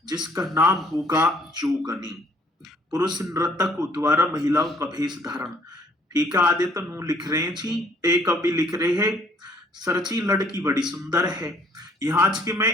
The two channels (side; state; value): both; normal; correlation 0.61